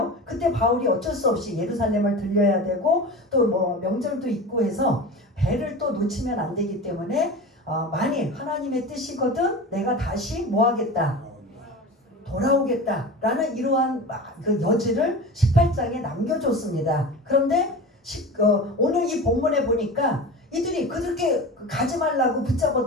그때 바울이 어쩔 수 없이 예루살렘을 들려야 되고 또 명절도 있고 해서 배를 또 놓치면 안 되기 때문에 만일 하나님의 뜻이거든 내가 다시 하겠다? 돌아오겠다 라는 이러한 그 여지를 18장에 남겨줬습니다. 그런데 오늘 이 본문에 보니까 이들이 그렇게 가지 말라고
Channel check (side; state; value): both; normal; correlation 0.32